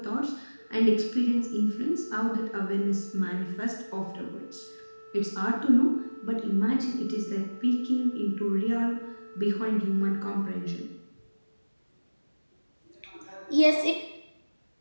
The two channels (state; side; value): inverted; both; correlation -1.00